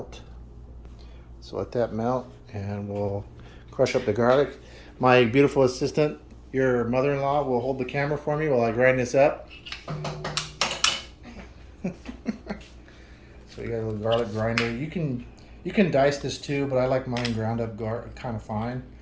So let that melt and we'll crush up the garlic. My beautiful assistant, your mother-in-law, will hold the camera for me while I grind this up. So you got a little garlic grinder. You can dice this too, but I like mine ground up kind of fine.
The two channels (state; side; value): identical; both; correlation 1.00